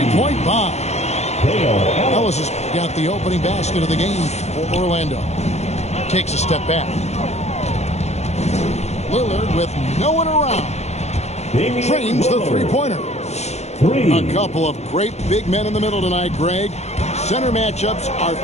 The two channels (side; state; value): right; late; 0.32 ms